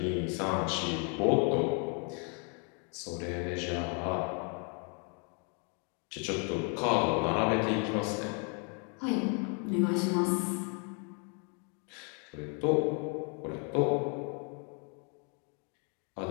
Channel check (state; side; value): quieter; right; 37.8 dB